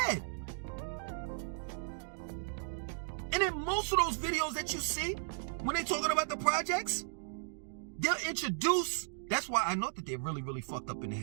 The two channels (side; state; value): left; silent; digital silence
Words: And in most of those videos that you see, when they're talking about the projects, they'll introduce, that's why I know that they're really, really fucked up in the